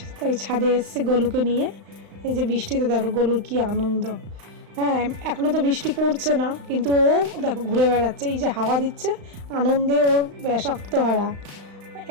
তাই ছাদে এসছে গলুকে নিয়ে। এই যে বৃষ্টিতে দেখো গলুর কি আনন্দ। হ্যাঁ, এখনো তো বৃষ্টি পড়ছে না, কিন্তু ও দেখো ঘুরে বেড়াচ্ছে, এই যে হাওয়া দিচ্ছে, আনন্দে ওর ব্যাস আত্মহারা।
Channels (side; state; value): left; late; 35 ms